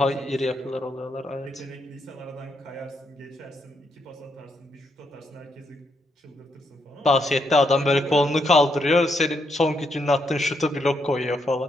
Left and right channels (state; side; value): normal; both; correlation 0.78